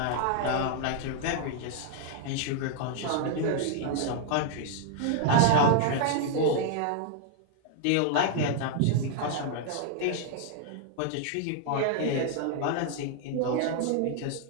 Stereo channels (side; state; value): both; different; correlation 0.00